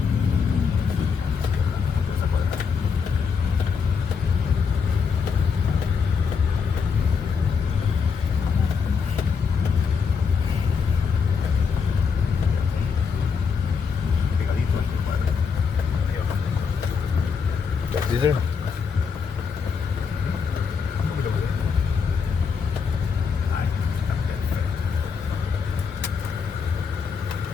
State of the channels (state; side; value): quieter; right; 5.9 dB